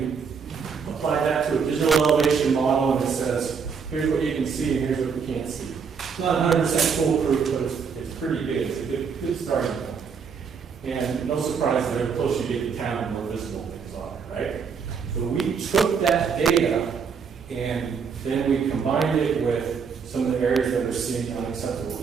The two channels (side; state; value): left; quieter; 6.1 dB